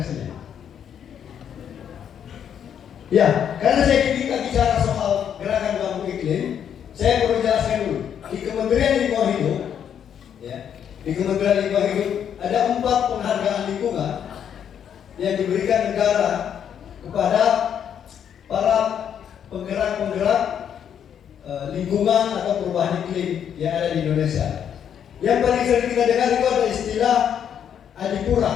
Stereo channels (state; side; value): quieter; right; 8.7 dB